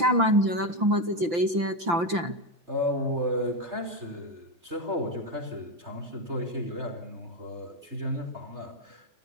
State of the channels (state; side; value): late; left; 5.8 ms